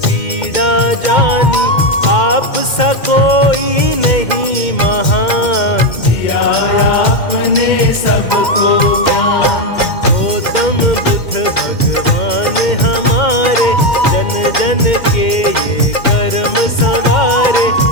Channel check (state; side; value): late; right; 2.1 ms